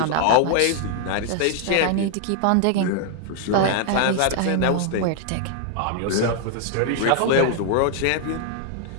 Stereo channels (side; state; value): both; different; correlation 0.00